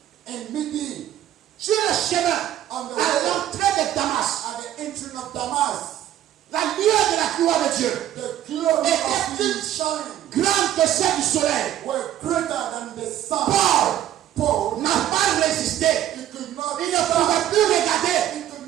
in midi sur le chemin, on the à way l'entrée de Damas, at the entering of Damas, la lueur de la gloire de Dieu, the glory Et of puis- his shine grande que celle du soleil, were greater than the sun. Paul Paul, n'a pas résisté. he could not Il ne stand. pouvait plus regarder, He could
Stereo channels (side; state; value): left; quieter; 12.0 dB